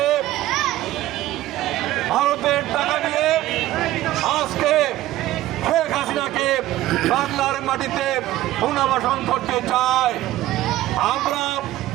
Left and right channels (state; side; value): quieter; left; 15.3 dB